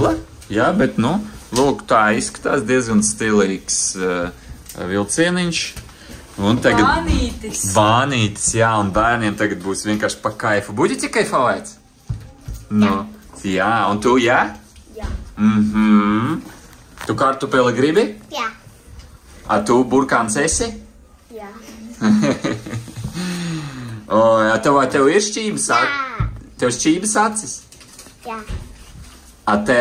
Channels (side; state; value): both; identical; correlation 1.00